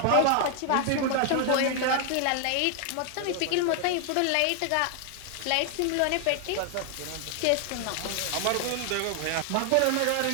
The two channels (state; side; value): different; both; correlation 0.00